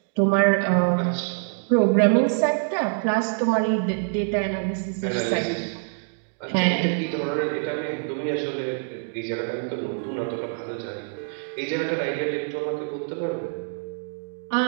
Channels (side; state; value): left; silent; 62 dB below the other